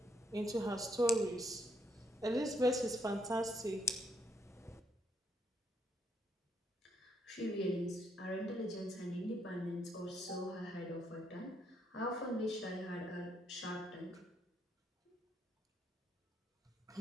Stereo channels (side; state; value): both; normal; correlation 0.74